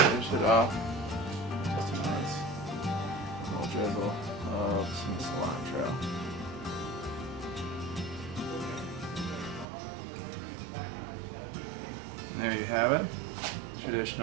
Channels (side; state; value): left; drops out; at 9.7 s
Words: it off. Just a nice little drizzle of some cilantro. And there you have it.